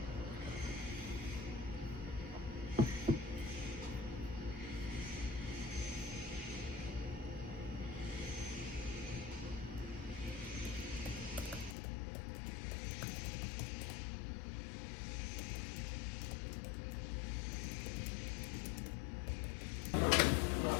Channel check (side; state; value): right; drops out; at 11.8 s